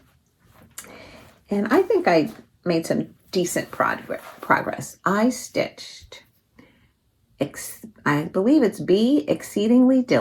And I think I made some decent progress. I stitched, I believe it's Be Exceedingly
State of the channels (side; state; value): both; identical; correlation 1.00